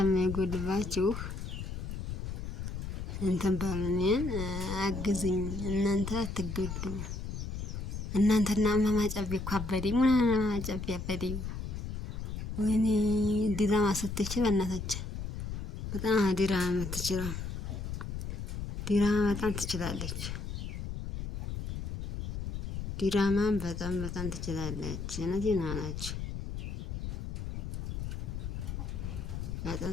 እንትን በሉ እኔን አግዙኝ። እናንተ አትጎዱም። እናንተና እማማ ጨቤ እኮ አበደኝ። እማማ ጨቤ አበደኝ። ወይኔ ዲራማ ስትችል በእናታችን በጣም ዲራማ የምትችለው ዲራማ በጣም ትችላለች። ዲራማን በጣም ትችላለች። እውነቴን ነው አላችሁ። በጣም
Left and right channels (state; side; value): noise; left; rumble, 5 dB below the sound